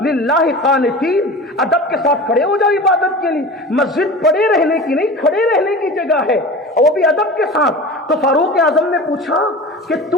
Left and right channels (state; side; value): normal; both; correlation 0.34